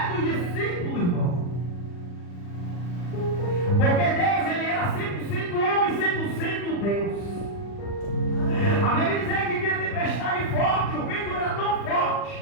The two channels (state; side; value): late; right; 40 ms